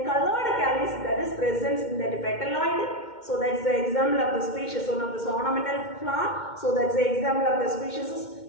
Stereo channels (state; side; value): late; right; 2.1 ms